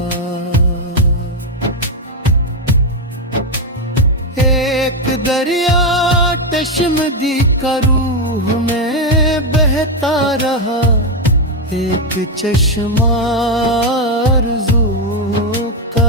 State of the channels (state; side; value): normal; both; correlation 0.06